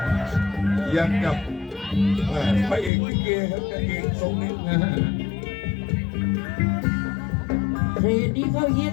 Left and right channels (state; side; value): drops out; right; at 2.9 s